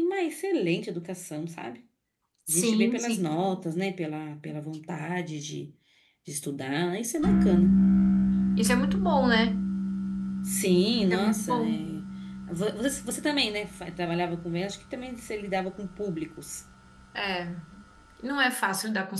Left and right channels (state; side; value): identical; both; correlation 1.00